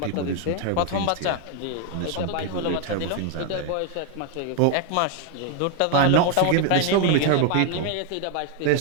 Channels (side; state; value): both; different; correlation 0.00